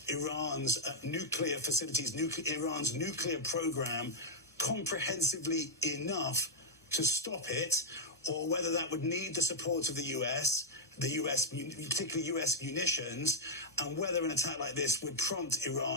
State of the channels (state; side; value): normal; both; correlation -0.04